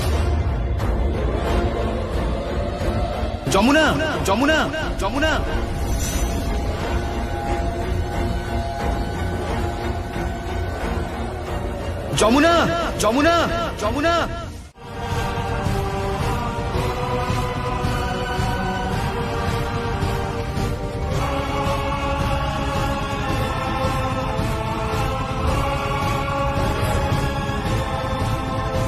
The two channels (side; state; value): both; identical; correlation 1.00